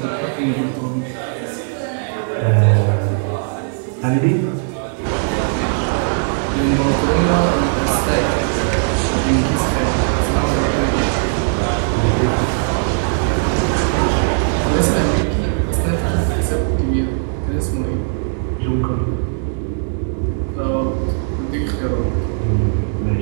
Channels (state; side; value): silent; left; digital silence